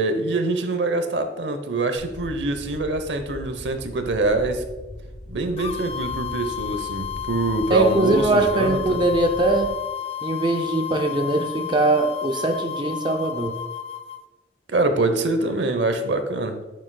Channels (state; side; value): normal; both; correlation 0.33